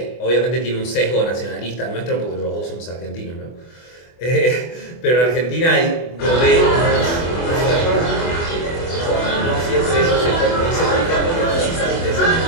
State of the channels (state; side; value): late; right; 24 ms